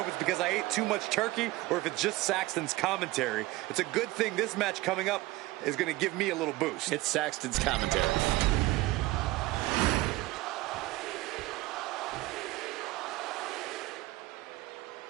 if it's because I ate too much turkey or if it's just Saxton's commentary. It's a good thing this match coming up is gonna give me a little boost. It's Saxton's commentary.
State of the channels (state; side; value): quieter; left; 19.2 dB